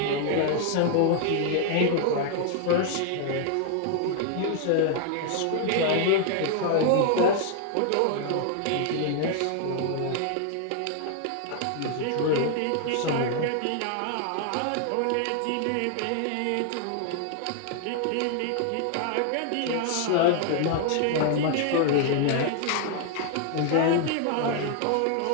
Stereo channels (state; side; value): different; both; correlation 0.00